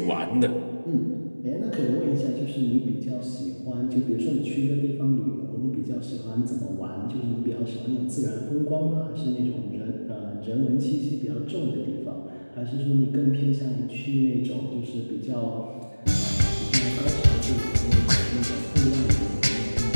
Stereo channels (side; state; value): both; inverted; correlation -1.00